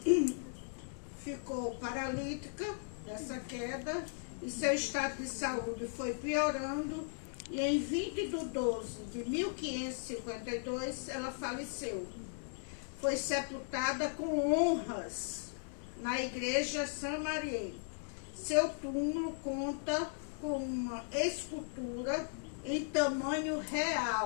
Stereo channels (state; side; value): silent; right; digital silence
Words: ficou paralítica dessa queda e seu estado de saúde foi piorando e em 20 de 12 de 1552 ela faleceu. Foi sepultada com honras na igreja Saint-Marie. Seu túmulo conta com uma escultura em tamanho